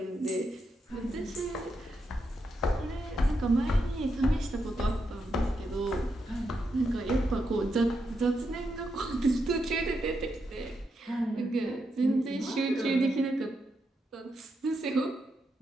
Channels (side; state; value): both; normal; correlation 0.83